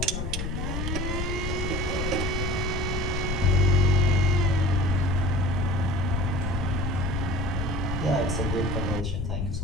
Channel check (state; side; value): noise; left; rumble, 2 dB below the sound